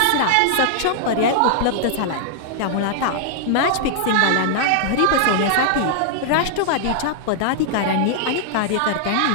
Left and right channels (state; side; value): different; both; correlation -0.01